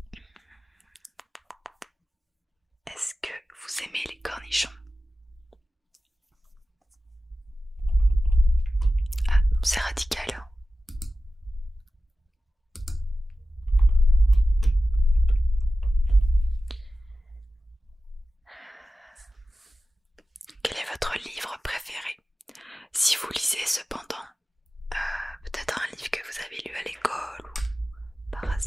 Est-ce que vous aimez les cornichons? Ah, c'est radical, hein. Quel est votre livre préféré? que vous avez lu à l'école ou par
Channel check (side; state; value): both; normal; correlation 0.94